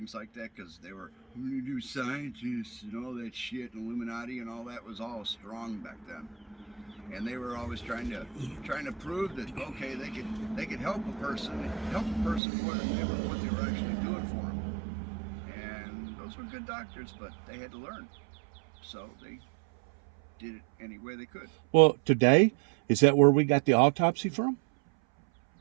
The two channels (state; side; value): drops out; left; at 12.4 s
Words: like that, because they were do scientists and all that shit, and Illuminati and all that was all strong back then, and they were always trying to prove that okay they could help a person more than what they were actually doing for them, and those were good doctors, but they had to learn, so they did it any way they could. Well, today, is that where we got the autopsy from?